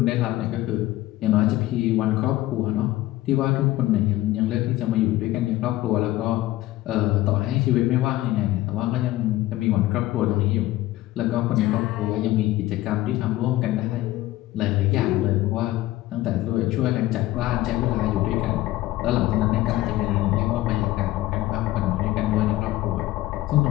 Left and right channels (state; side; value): quieter; right; 16.3 dB